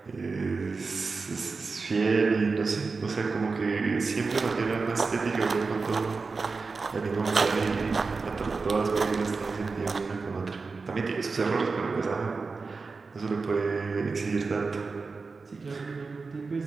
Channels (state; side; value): quieter; left; 4.3 dB